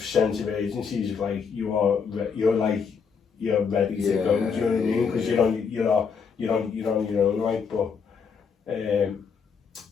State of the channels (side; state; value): right; quieter; 6.0 dB